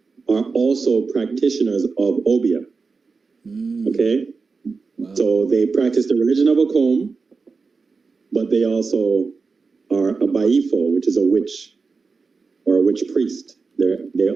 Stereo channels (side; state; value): left; quieter; 4.6 dB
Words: are also practitioners of Obia. Okay? Wow. So they practice the religion of Akom, but they also are a Baifo, which is a witch, or a witch priest. They